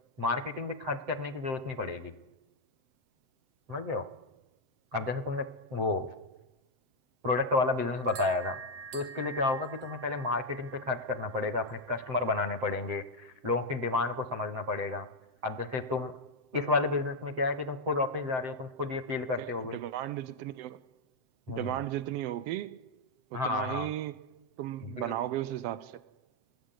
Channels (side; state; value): left; late; 7.8 ms